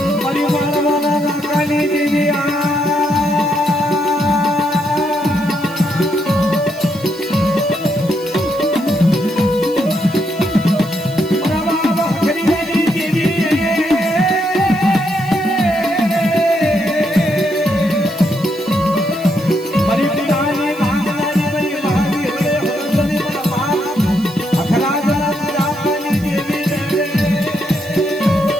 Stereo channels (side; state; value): right; noise; hiss, 20 dB below the sound